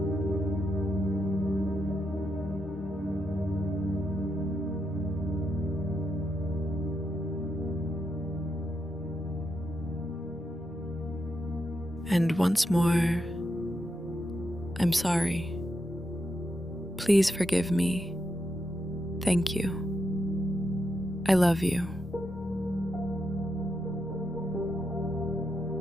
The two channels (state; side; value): normal; both; correlation 0.83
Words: And once more, I'm sorry. Please forgive me. Thank you. I love you.